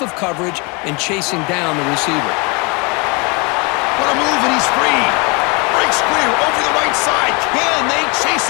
of coverage and chasing down the receiver. What a move, and he's free. Breaks clear over the right side. Can they chase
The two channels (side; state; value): right; quieter; 30.3 dB